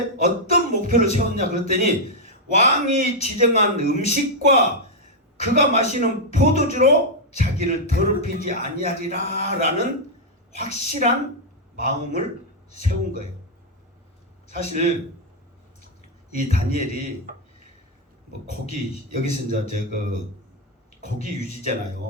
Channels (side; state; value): both; normal; correlation -0.02